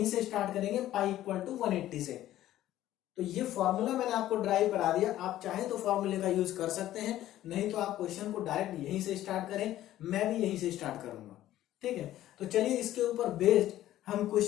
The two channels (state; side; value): quieter; right; 13.6 dB